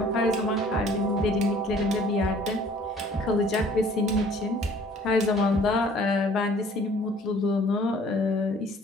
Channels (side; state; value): both; normal; correlation 0.54